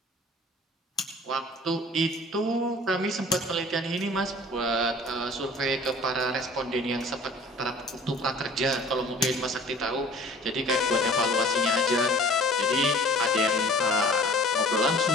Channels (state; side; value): normal; both; correlation 0.48